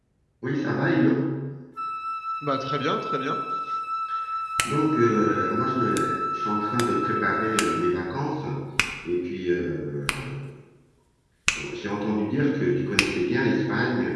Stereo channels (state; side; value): identical; both; correlation 1.00